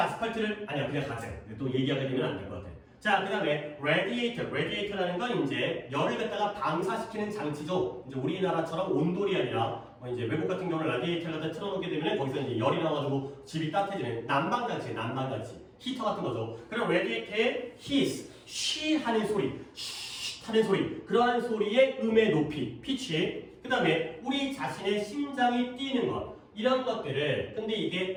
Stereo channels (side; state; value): both; identical; correlation 1.00